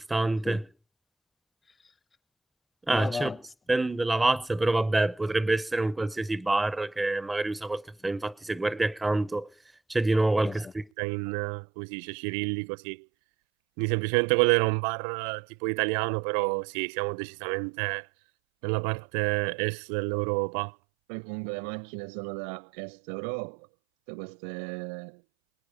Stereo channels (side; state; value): left; drops out; at 10.9 s